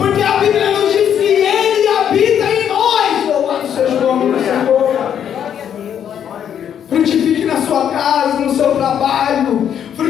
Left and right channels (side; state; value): right; quieter; 9.1 dB